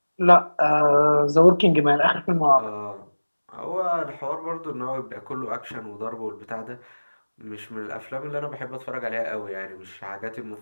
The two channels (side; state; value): both; inverted; correlation -1.00